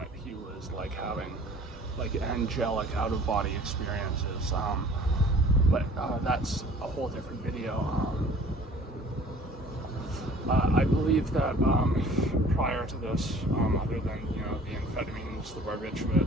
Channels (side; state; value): both; normal; correlation 0.50